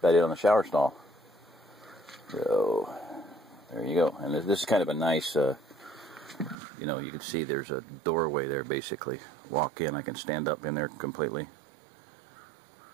it on the shower stall. So there you go. And this is kind of a nice, you know, you can see there's a doorway there basically. Walk in, I can stand up in there completely.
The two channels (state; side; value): drops out; left; at 6.6 s